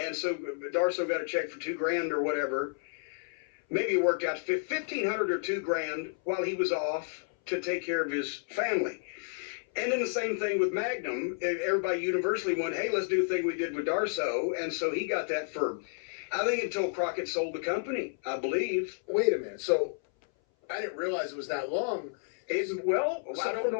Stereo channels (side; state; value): right; silent; 57 dB below the other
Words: so Darso got a check for $2,000 or whatever. Maybe it worked out to $1,500 or $2,000 while he was off to take care of his family. And then the same thing with Magnum. Everybody universally went, hey, let's do the thing we did with Darso. And so he got that for, I think, until Crockett sold the company, I believe. Wait a minute. So I didn't realize it was that long. I don't